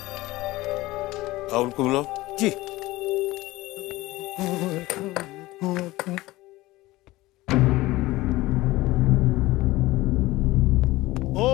राहुल को बुलाओ जी।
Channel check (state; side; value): quieter; right; 18.7 dB